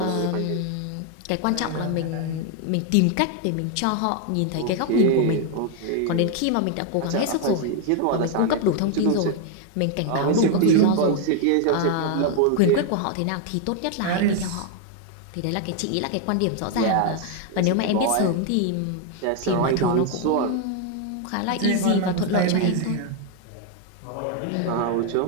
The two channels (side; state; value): both; different; correlation 0.01